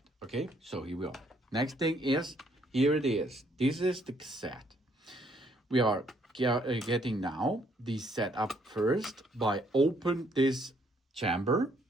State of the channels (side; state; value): both; normal; correlation 0.68